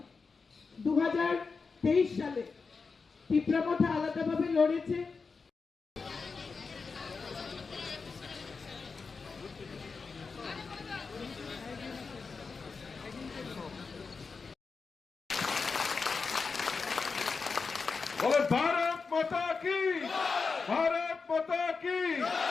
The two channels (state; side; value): quieter; right; 4.8 dB